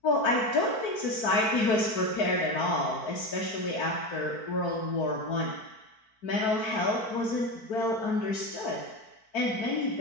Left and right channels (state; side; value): late; right; 4.5 ms